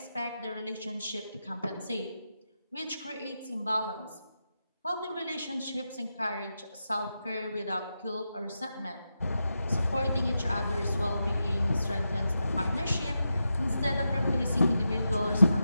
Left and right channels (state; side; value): inverted; both; correlation -0.88